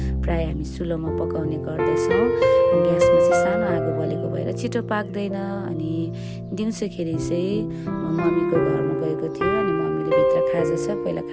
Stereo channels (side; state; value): both; identical; correlation 1.00